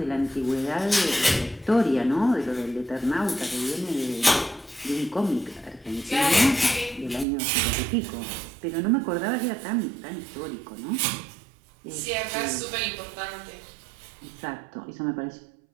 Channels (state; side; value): drops out; left; at 7.2 s